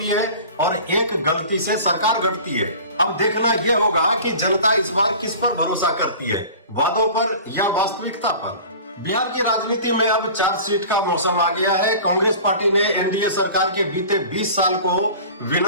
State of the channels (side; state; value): both; inverted; correlation -0.40